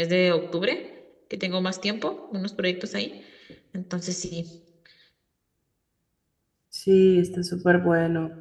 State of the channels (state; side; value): identical; both; correlation 1.00